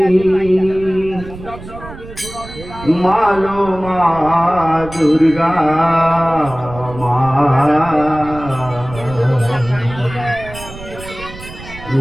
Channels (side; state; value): right; noise; rumble, 14 dB below the sound